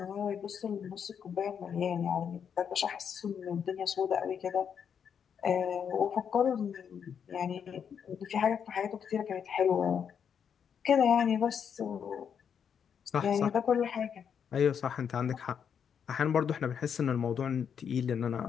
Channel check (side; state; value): right; quieter; 7.6 dB